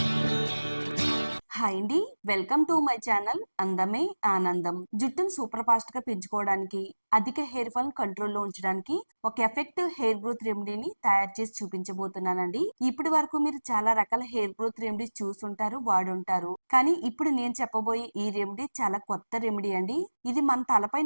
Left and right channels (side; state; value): both; inverted; correlation -1.00